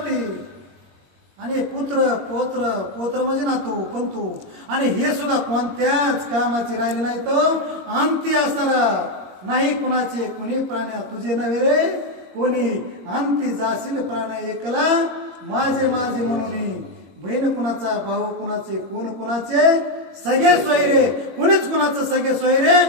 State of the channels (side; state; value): left; late; 21 ms